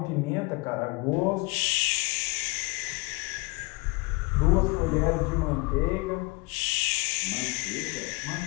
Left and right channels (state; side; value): quieter; right; 25.0 dB